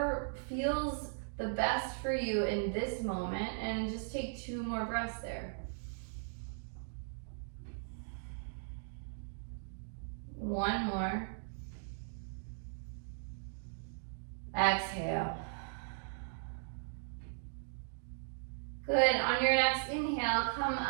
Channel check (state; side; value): silent; left; digital silence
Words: feels the best for you in this moment, and just take 2 more breaths there. One more. Exhale. Good. On your next inhale, come